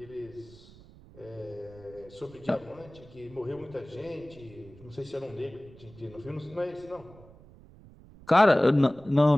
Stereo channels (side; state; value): right; noise; rumble, 22 dB below the sound